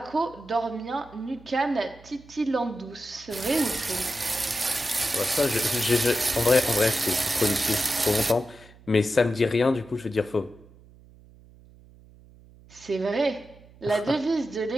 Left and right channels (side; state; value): right; noise; hum, 24 dB below the sound